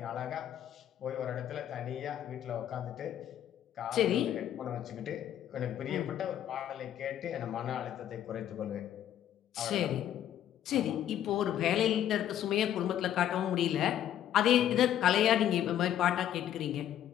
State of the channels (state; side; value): quieter; right; 11.0 dB